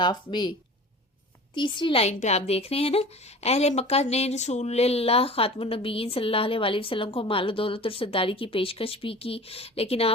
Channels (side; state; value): both; normal; correlation 0.39